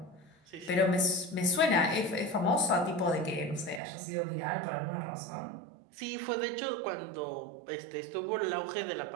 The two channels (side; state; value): left; drops out; at 3.8 s